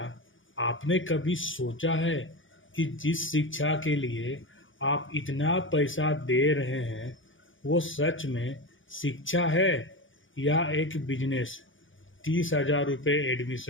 आपने कभी सोचा है कि जिस शिक्षा के लिए आप इतना पैसा दे रहे हैं वो सच में शिक्षा है या एक बिजनेस? 30,000 रुपये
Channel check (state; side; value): late; right; 0.57 ms